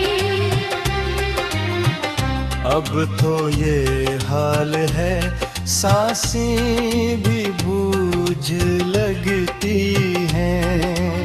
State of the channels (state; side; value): identical; both; correlation 1.00